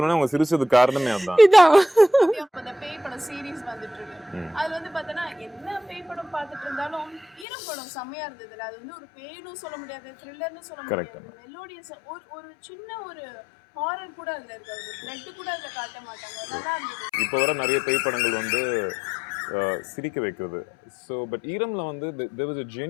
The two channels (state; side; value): drops out; right; at 7.5 s